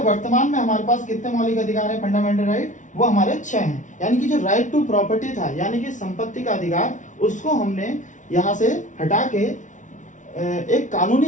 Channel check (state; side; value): late; right; 0.37 ms